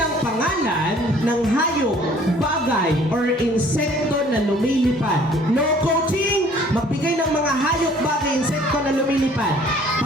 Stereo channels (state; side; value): normal; both; correlation 0.55